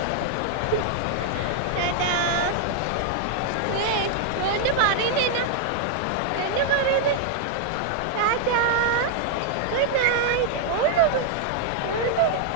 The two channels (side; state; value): both; different; correlation 0.00